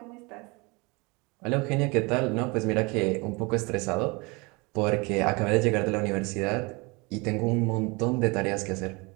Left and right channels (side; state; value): left; quieter; 27.1 dB